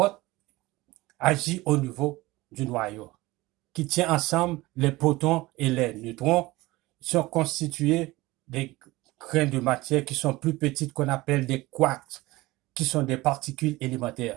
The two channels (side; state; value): left; quieter; 20.0 dB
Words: agit au niveau du noyau, qui tient ensemble les protons et les neutrons, sont constitués des grains de matière qui sont plus petites qu'on appelle des quarks, qui sont des particules